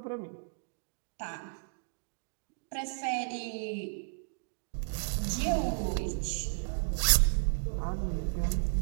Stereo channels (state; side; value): silent; left; digital silence